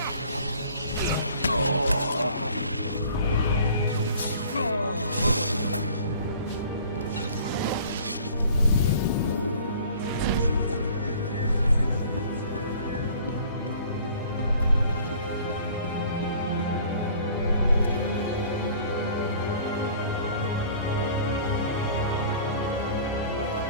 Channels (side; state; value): both; inverted; correlation -0.50